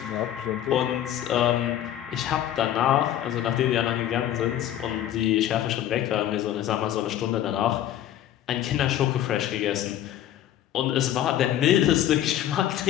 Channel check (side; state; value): right; quieter; 11.7 dB